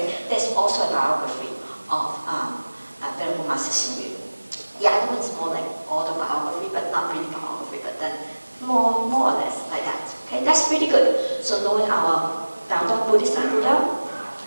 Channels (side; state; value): both; inverted; correlation -1.00